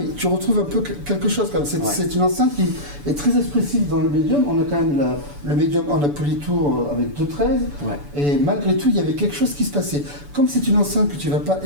tu retrouves un peu quelque chose comme c'est une enceinte qui est très expressive dans le médium. On a quand même le médium en Polytour avec 2.13 et malgré tout il y avait quelque chose qui se passait. Comme c'est une enceinte que tu vas pas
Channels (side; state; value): left; late; 6.9 ms